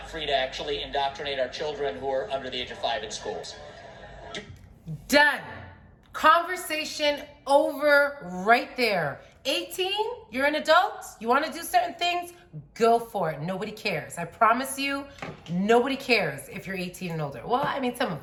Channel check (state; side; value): identical; both; correlation 1.00